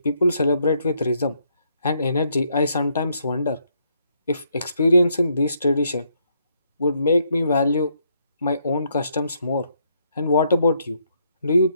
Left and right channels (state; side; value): inverted; both; correlation -0.74